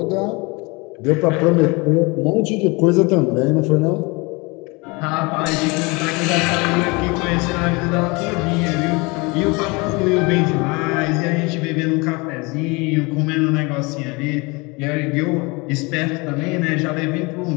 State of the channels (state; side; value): quieter; right; 27.0 dB